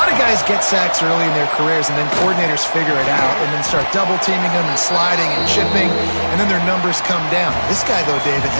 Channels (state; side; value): inverted; both; correlation -1.00